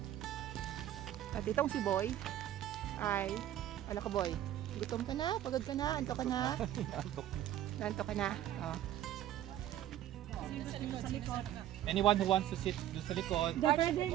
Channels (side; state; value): left; quieter; 12.3 dB